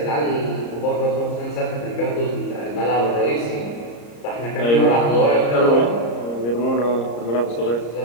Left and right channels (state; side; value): late; right; 34 ms